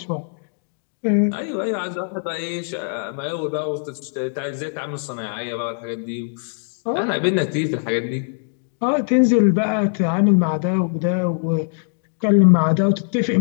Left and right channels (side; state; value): right; silent; digital silence